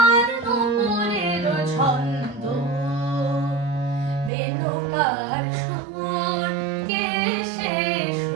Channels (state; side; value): drops out; left; at 4.3 s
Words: নুপুরেরও ছন্দ, বেনুকার সুর, কে সে